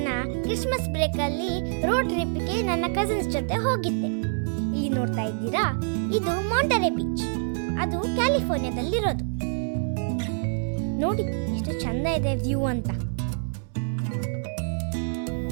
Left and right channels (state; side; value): silent; left; 61 dB below the other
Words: ಕ್ರಿಸ್ಮಸ್ ಬ್ರೇಕಲ್ಲಿ ರೋಡ್ ಟ್ರಿಪ್ಗೆ ನನ್ನ ಕಸಿನ್ಸ್ ಜೊತೆ ಹೋಗಿದ್ದೆ. ಇಲ್ಲಿ ನೋಡ್ತಾ ಇದ್ದೀರಾ, ಇದು ಮಾಂಟರೆ ಬೀಚ್. ಅದು ಕ್ಯಾಲಿಫೋರ್ನಿಯಾದಲ್ಲಿರೋದು. ನೋಡಿ ಎಷ್ಟು ಚಂದ ಇದೆ ವ್ಯೂ ಅಂತ.